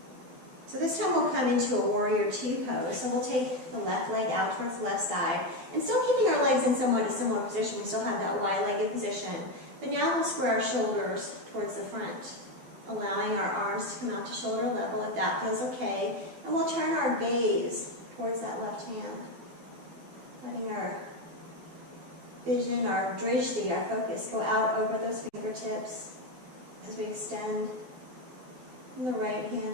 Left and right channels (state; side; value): late; left; 12 ms